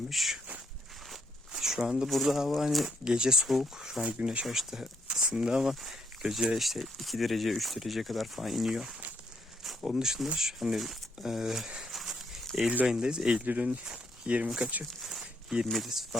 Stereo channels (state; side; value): normal; both; correlation 0.74